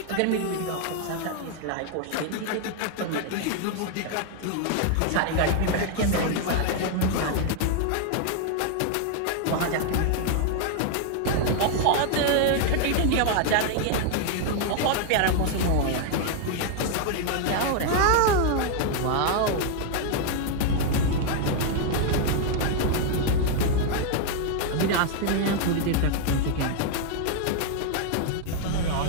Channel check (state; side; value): different; both; correlation 0.00